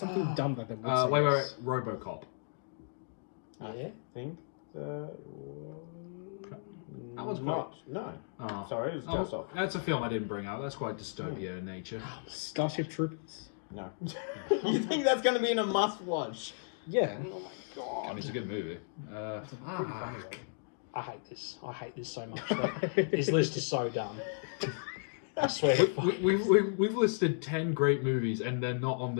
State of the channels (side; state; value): right; silent; digital silence